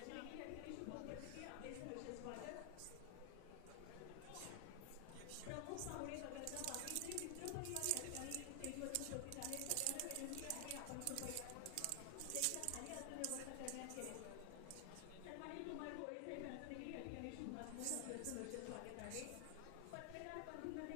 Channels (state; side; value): different; both; correlation 0.00